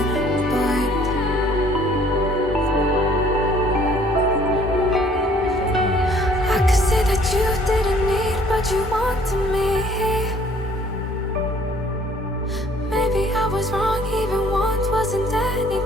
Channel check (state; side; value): normal; both; correlation 0.57